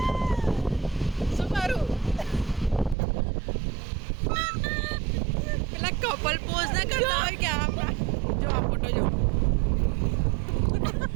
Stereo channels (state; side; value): drops out; left; at 3.0 s